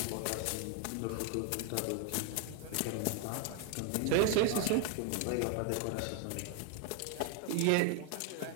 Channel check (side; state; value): both; different; correlation 0.01